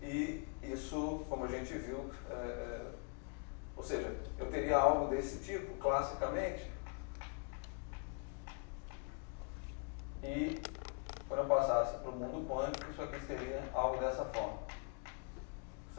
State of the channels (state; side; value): quieter; right; 37.8 dB